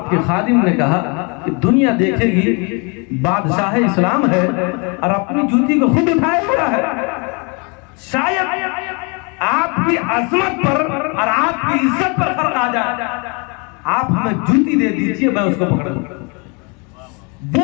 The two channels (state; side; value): quieter; right; 32.4 dB